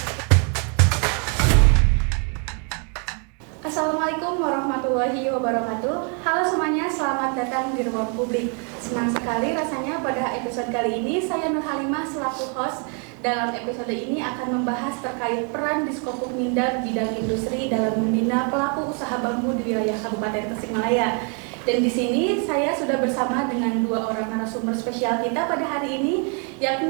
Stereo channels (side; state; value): left; quieter; 38.3 dB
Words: Assalamualaikum warahmatullahi wabarakatuh. Halo semuanya, selamat datang di Ruang Publik. Senang sekali rasanya pada episode kali ini saya Nur Halimah selaku host. Dalam episode ini akan membahas terkait peran Diskopuk Mindag bidang industri dalam membina pelaku usaha bambu di wilayah Kabupaten Tasikmalaya. Dan di sini saya sudah bersama dengan dua orang narasumber spesial kita pada hari ini,